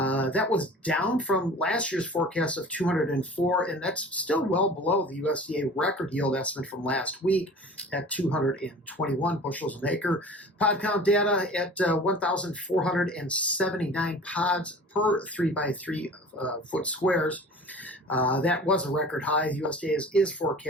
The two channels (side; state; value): both; normal; correlation 0.42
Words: was down from last year's forecast of 204, and that's still well below the USDA record yield estimate from last week at 221 bushels an acre. Pod count data at 1,479 pods per 3x3 foot squares. That was a record high. The USDA is